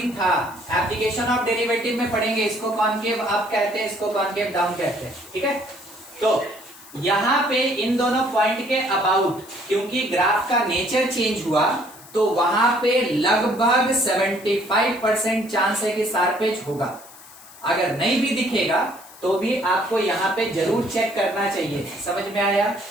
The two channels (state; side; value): noise; left; hiss, 20 dB below the sound